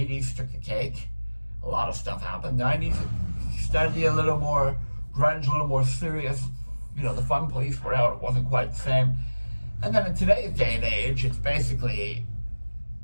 took the cake. A lot of stuff happened. 90s started to get a little more grunge, a little more serious. You know, the Fun Police were out. It wasn't quite the same. And then in today's day and age, it's basically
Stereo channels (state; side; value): inverted; both; correlation -1.00